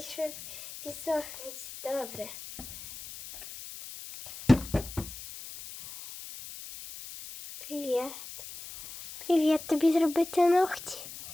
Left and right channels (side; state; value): left; noise; hiss, 13 dB below the sound